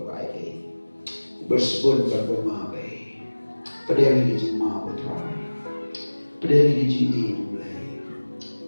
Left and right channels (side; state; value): both; inverted; correlation -1.00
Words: by day. Bersebut berpemabai. Pedang ini mau try. Pedang ini mulai.